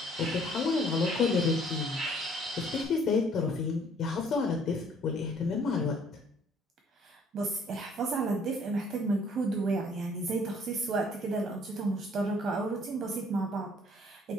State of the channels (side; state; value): both; normal; correlation 0.59